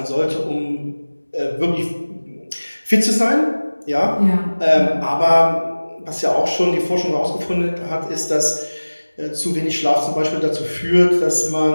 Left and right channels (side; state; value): both; inverted; correlation -1.00